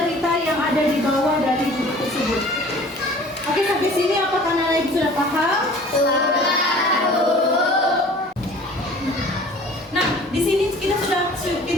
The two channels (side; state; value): both; normal; correlation 0.47